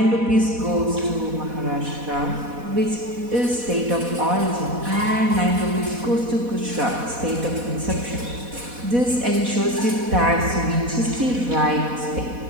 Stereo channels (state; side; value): late; left; 4.1 ms